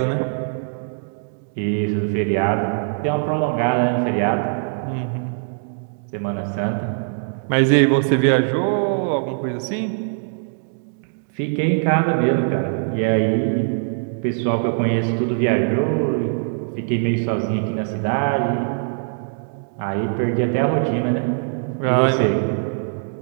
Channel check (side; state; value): left; silent; digital silence